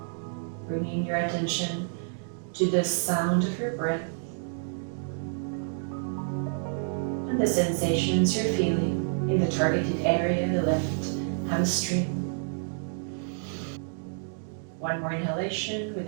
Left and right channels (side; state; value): left; silent; digital silence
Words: Bringing your attention to the sound of your breath and the sensations you're feeling in the targeted area, the left hamstring. One more inhalation with